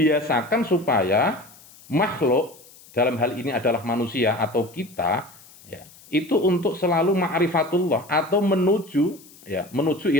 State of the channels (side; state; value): left; noise; hiss, 23 dB below the sound